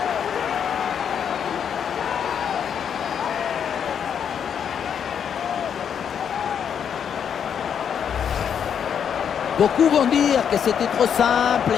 Beaucoup vont dire que c'était trop simple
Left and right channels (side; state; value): right; quieter; 8.0 dB